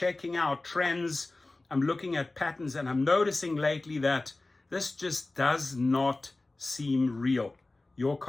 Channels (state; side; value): quieter; right; 3.1 dB